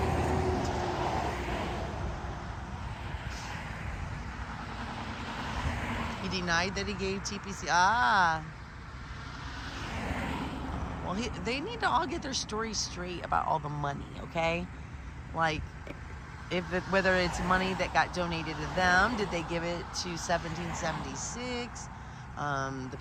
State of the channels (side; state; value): both; identical; correlation 1.00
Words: He denied that he gave TPC. Well, they need to all get their story straight about all the money, okay? Like, whether it's money that got donated to them, did they give it to 1776, the